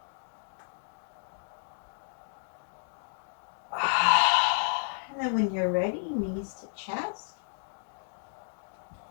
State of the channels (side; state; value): right; silent; digital silence